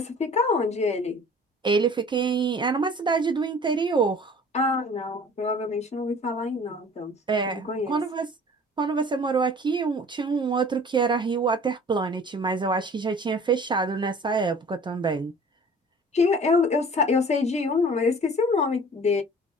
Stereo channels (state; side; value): normal; both; correlation 0.47